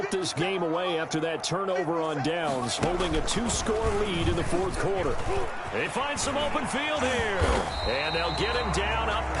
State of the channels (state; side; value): identical; both; correlation 1.00